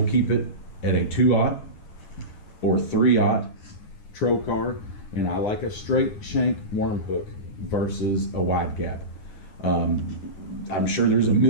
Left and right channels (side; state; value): right; late; 9.8 ms